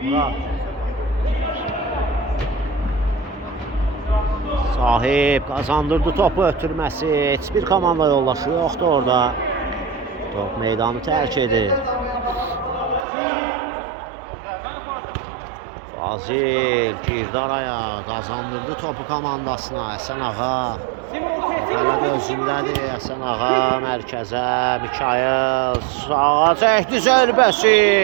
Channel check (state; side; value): drops out; left; at 13.1 s